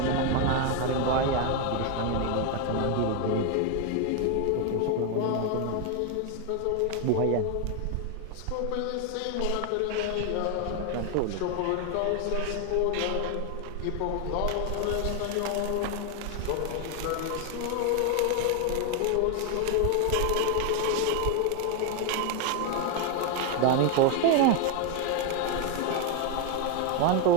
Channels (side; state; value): both; different; correlation 0.01